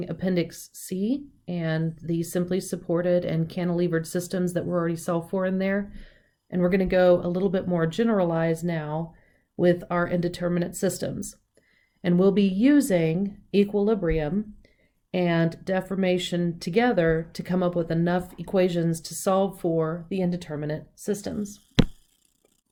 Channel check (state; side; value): identical; both; correlation 1.00